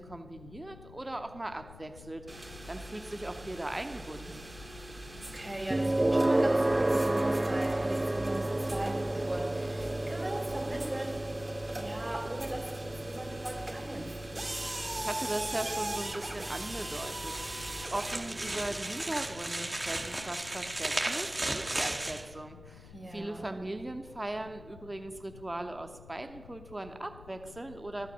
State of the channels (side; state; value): left; noise; rumble, 17 dB below the sound